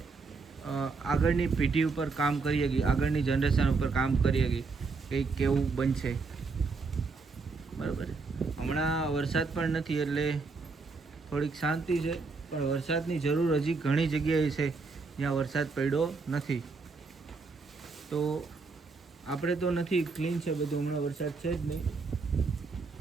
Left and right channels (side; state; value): left; quieter; 4.3 dB